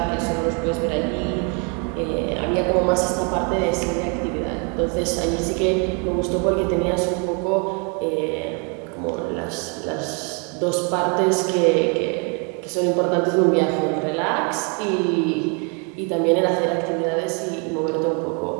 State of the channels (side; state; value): left; quieter; 35.8 dB